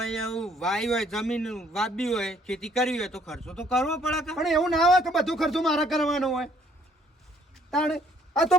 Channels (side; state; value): both; normal; correlation 0.63